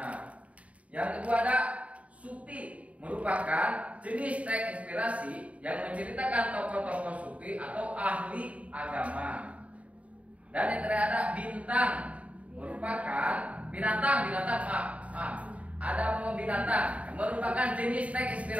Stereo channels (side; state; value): left; late; 0.066 ms